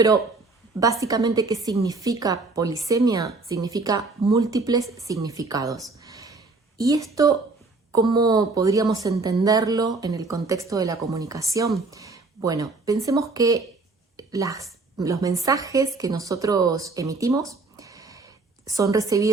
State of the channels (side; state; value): left; quieter; 3.7 dB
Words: básicamente, ¿qué significa polisemia? Significa múltiples significados. ¿Y esto cómo podríamos entenderlo en el contexto de la comunicación? Bueno, pensemos que los mensajes que nosotros emitimos son